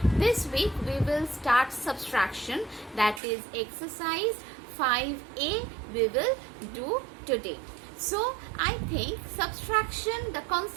this week we will start subtraction, that is exercise 5A we will do today. So I think subtraction, the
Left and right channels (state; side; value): drops out; left; at 3.2 s